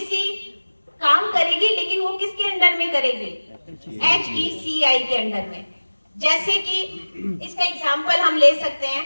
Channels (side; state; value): both; inverted; correlation -1.00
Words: काम करेगी लेकिन वो किसके अंडर में करेगी, HECI के अंडर में। जैसे कि इसका एग्जांपल हम ले सकते हैं